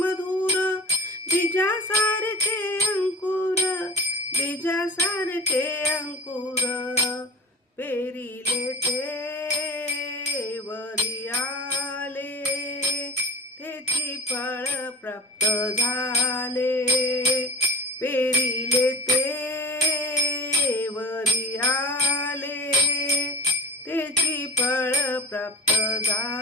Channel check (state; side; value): normal; both; correlation 0.38